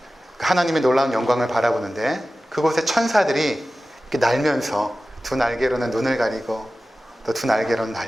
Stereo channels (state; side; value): normal; both; correlation 0.95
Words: 하나님의 놀라운 영광을 바라보는데 그곳에 천사들이 이렇게 날면서 두 날개로는 눈을 가리고 또 두 날개로는